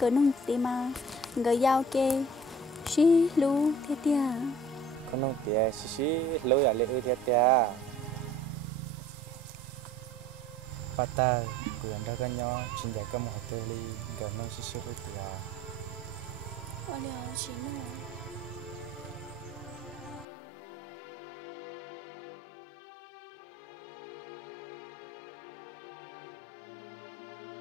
nông tí mà. Người giao kê, xí lú thế tia. Con nông tía xí lối ở lệ ư thế tía. Bắt ta cứ ăn ra cái nhỏ, chính giải có một hạt tê ly, gần nông xí lối tía. Ôi liệu chị nô.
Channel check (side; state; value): right; drops out; at 20.2 s